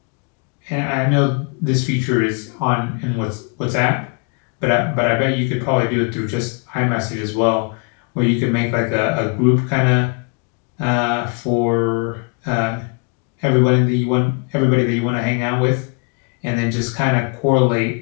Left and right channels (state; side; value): quieter; right; 34.2 dB